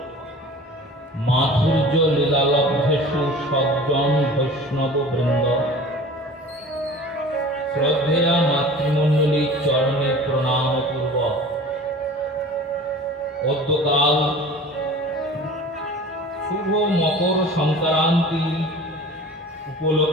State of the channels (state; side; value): normal; both; correlation 0.42